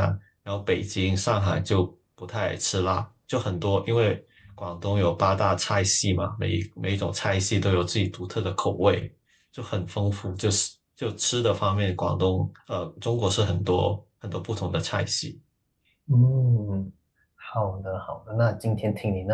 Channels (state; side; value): identical; both; correlation 1.00